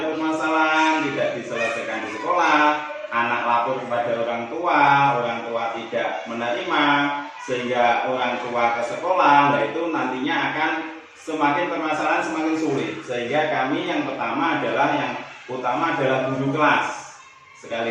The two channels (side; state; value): both; identical; correlation 1.00